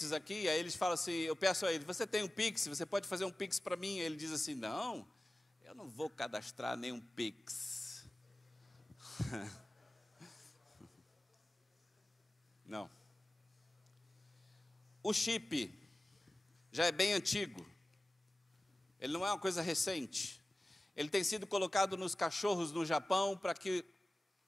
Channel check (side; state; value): both; normal; correlation 0.96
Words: aqui, aí eles falam assim, eu peço a ele, você tem um Pix, você pode fazer um Pix para mim? Ele diz assim, não, eu não vou cadastrar nenhum Pix. Não. O chip já é bem antigo, ele não é uma coisa recente. Ele tem sido colocado nos cachorros no Japão para que